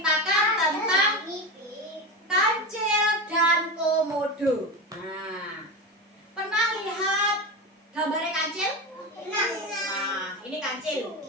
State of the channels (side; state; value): both; normal; correlation 0.21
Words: tentang Kancil dan Komodo. Nah, pernah lihat gambarnya kancil? Nah, ini kancil.